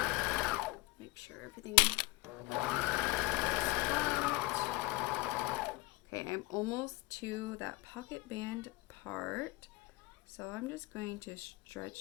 Make sure everything is flat. Okay, I'm almost to that pocket band part. So I'm just going to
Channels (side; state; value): right; quieter; 21.5 dB